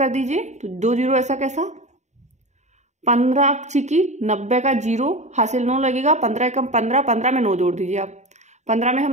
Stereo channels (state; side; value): late; left; 0.34 ms